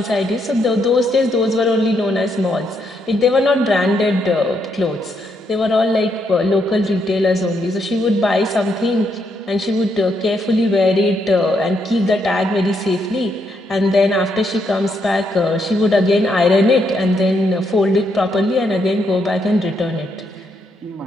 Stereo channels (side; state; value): both; normal; correlation 0.77